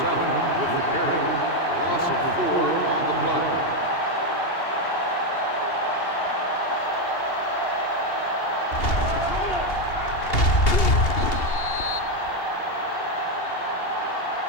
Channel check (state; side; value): late; right; 2.8 ms